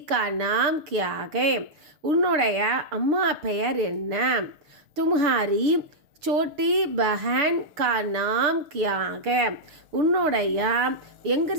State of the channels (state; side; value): late; left; 6.5 ms